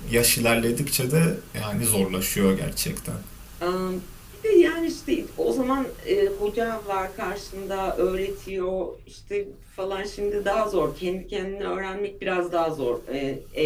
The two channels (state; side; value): identical; both; correlation 1.00